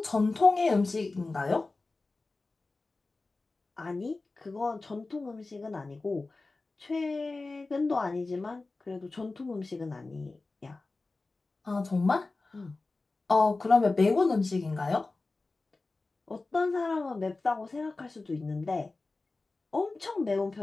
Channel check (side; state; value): right; quieter; 3.5 dB